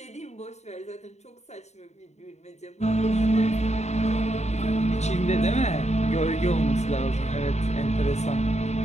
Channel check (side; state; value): right; late; 0.32 ms